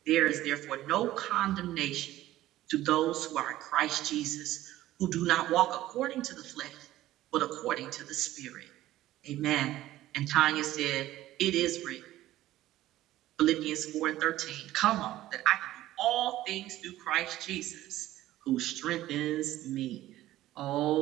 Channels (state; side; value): quieter; left; 14.9 dB